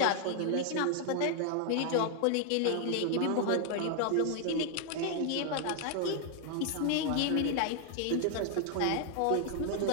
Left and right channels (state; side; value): different; both; correlation 0.00